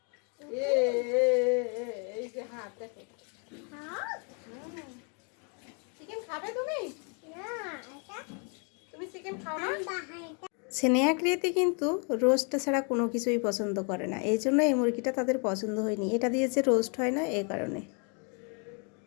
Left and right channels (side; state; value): right; quieter; 37.7 dB